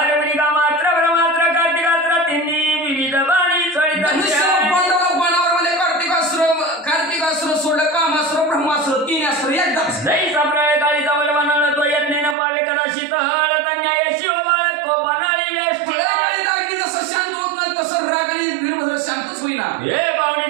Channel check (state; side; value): drops out; left; at 12.4 s